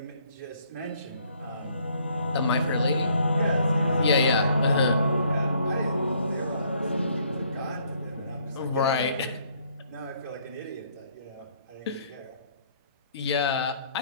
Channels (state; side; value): inverted; both; correlation -0.65